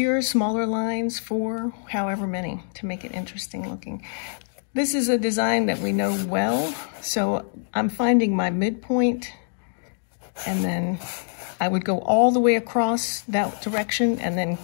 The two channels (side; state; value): right; silent; digital silence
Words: smaller lines, 4, however many, to make it interesting looking. This is a design that we know well, so I'm finding my midpoint, and then I would go all the way across that direction and then